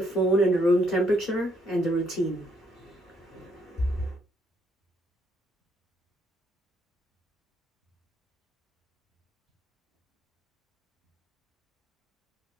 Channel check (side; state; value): both; normal; correlation 0.71